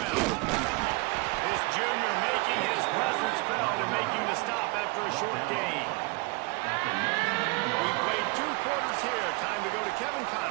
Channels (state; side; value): quieter; left; 27.5 dB